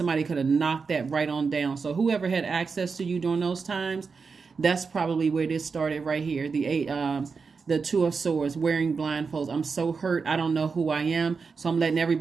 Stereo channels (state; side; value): quieter; left; 5.1 dB